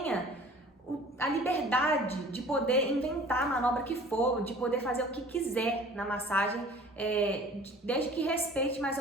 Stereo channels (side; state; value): both; normal; correlation 0.47